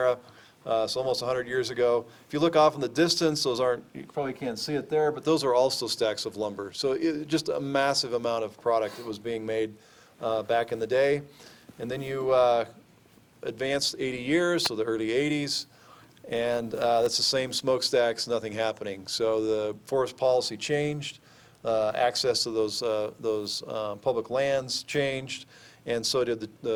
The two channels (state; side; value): identical; both; correlation 1.00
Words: so almost 100 years ago. If you look off in the distance, those aren't, you probably can't see it there, but those are also stacks of lumber. So just a massive amount of product that was being made back in the day. And then you advanced 80 years, so the early 80s, and that's the same smokestacks, nothing happening. So the forest policy changed, access to those public lands changed, and so did